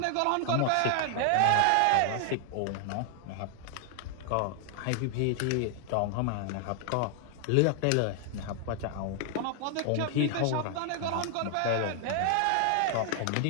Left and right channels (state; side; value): different; both; correlation 0.00